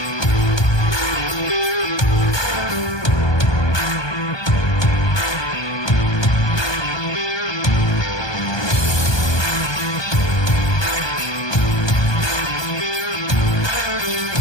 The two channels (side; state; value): right; late; 1.2 ms